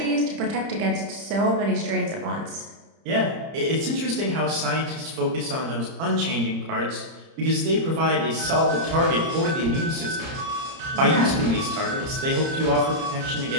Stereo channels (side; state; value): left; late; 30 ms